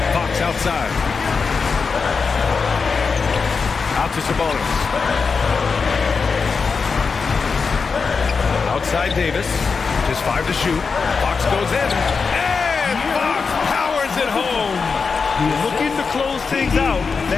Fox outside. Out to Sabonis. Outside Davis. Just 5 to shoot. Fox goes in. And Fox powers it home. Looking to close things out.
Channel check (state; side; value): quieter; right; 5.1 dB